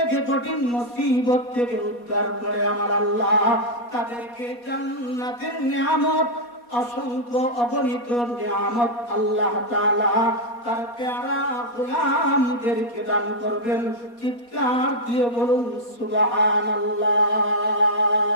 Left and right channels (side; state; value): right; late; 4.2 ms